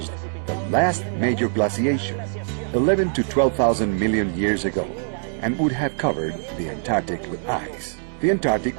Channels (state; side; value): silent; left; 63 dB below the other